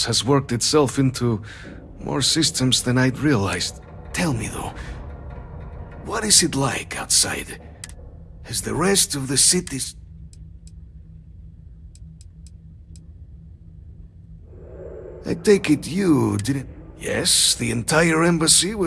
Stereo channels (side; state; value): both; identical; correlation 1.00